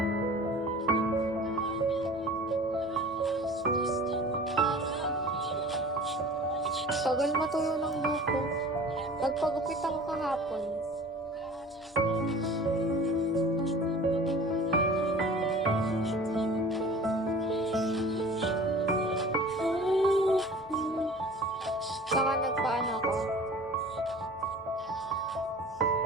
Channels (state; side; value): normal; both; correlation 0.43